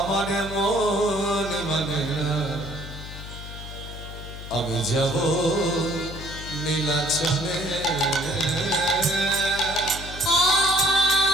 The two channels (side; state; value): left; noise; hum, 11 dB below the sound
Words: মন মানে না, আমি যাব নীলাচলে।